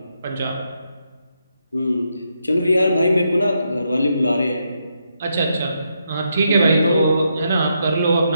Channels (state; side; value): inverted; both; correlation -0.80